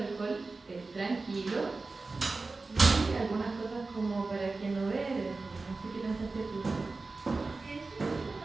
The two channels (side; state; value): left; quieter; 3.7 dB